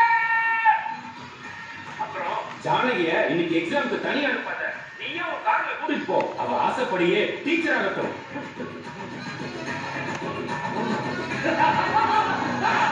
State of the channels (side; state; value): both; identical; correlation 1.00